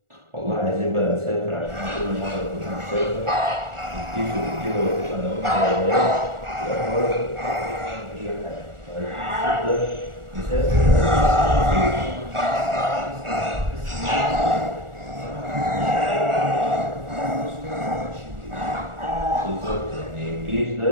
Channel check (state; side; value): late; left; 1.4 ms